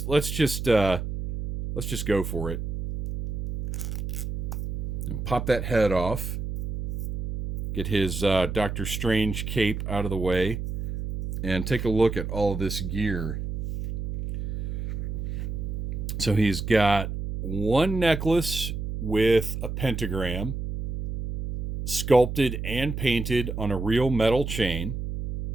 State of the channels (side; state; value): right; noise; hum, 4 dB below the sound